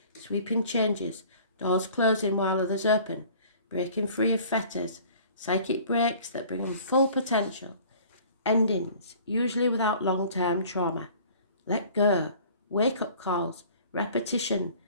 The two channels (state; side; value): inverted; both; correlation -0.49